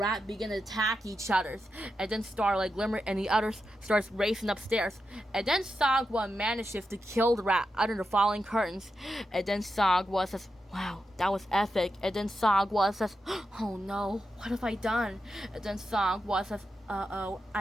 begin to attack each other. And then Starlight glimmered and the others starts racing upstairs. And then Sagwa manages to kill the rat under the falling curtains. And then Sagwa says, wow, that was epic. And then Sagwa says, oh no, what have I done? And then Sagwa says, uh-oh,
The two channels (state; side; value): normal; both; correlation 0.88